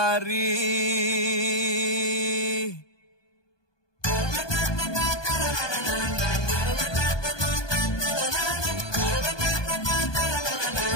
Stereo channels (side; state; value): right; late; 1.2 ms